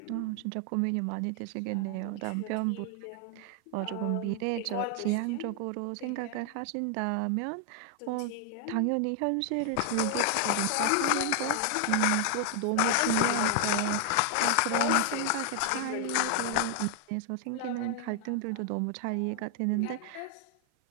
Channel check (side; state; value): both; different; correlation 0.00